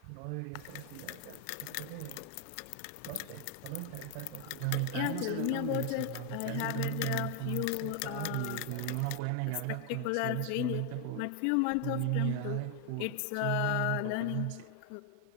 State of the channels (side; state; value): both; different; correlation 0.00